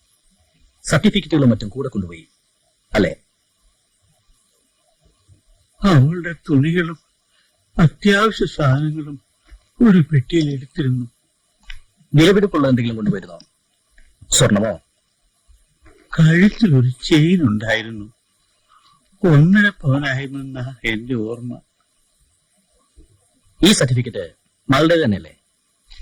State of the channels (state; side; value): identical; both; correlation 1.00